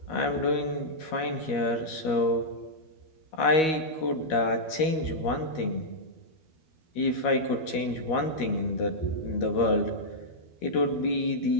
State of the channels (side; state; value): right; late; 13 ms